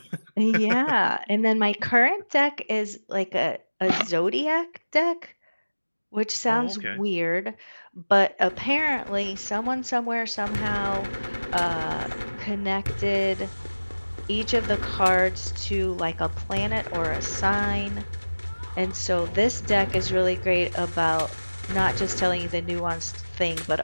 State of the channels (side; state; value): both; inverted; correlation -1.00